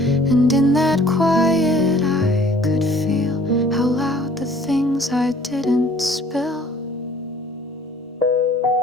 and in that quiet I could feel how loud the things I didn't spill.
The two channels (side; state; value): both; normal; correlation 0.54